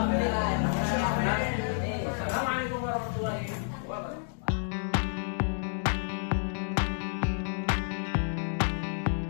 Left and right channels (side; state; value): right; silent; digital silence